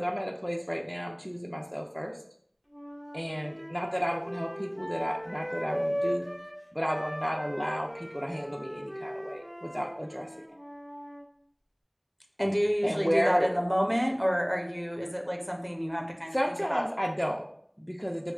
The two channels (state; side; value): identical; both; correlation 1.00